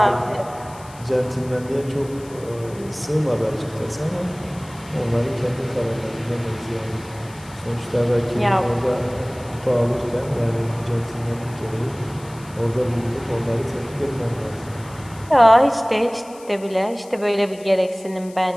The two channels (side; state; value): left; noise; hiss, 22 dB below the sound